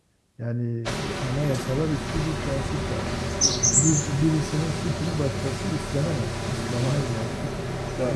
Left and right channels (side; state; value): both; identical; correlation 1.00